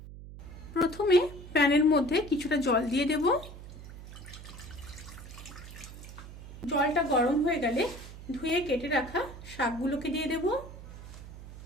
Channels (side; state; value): right; noise; hum, 14 dB below the sound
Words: প্রথমে প্যানের মধ্যে কিছুটা জল দিয়ে দেব। জলটা গরম হয়ে গেলে ধুয়ে কেটে রাখা শাকগুলোকে দিয়ে দেব।